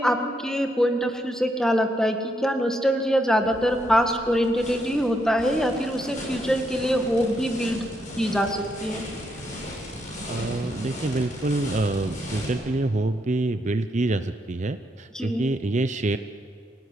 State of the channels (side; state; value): both; normal; correlation 0.78